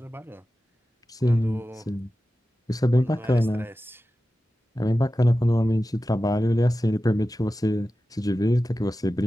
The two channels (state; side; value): normal; both; correlation 0.94